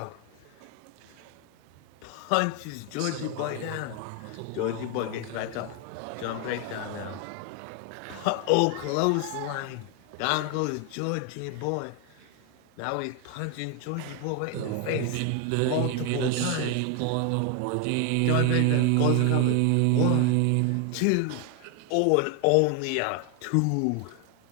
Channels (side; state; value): both; different; correlation 0.01